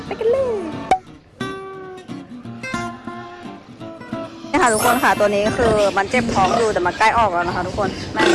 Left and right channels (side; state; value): both; identical; correlation 1.00